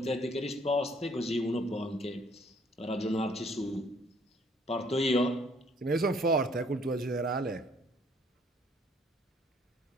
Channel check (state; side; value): normal; both; correlation 0.62